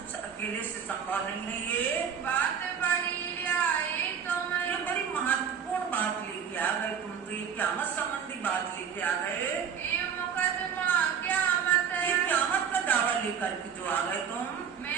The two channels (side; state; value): left; quieter; 7.5 dB